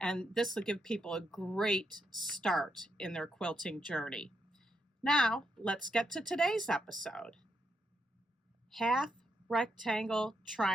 And this will give people a great start in their quilting journey. Now, let's get to today's episode. Half rectangle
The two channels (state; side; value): normal; both; correlation 0.81